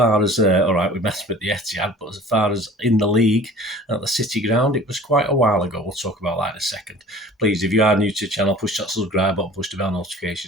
as, all right, we met at the Etihad, but as far as in the league at the City Ground, it was quite a while ago. We'll talk about that in a second. Please, if you are new to the channel, push that subscribe button, push the bell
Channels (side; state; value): both; normal; correlation 0.45